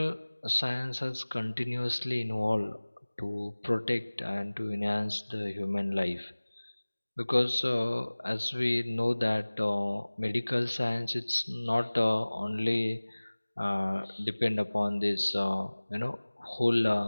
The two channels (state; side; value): inverted; both; correlation -1.00